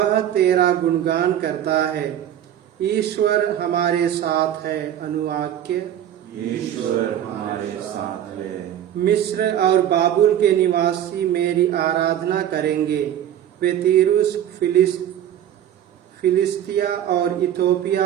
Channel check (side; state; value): left; quieter; 10.7 dB